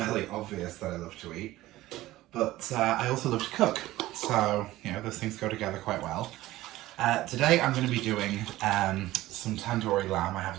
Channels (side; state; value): left; quieter; 16.6 dB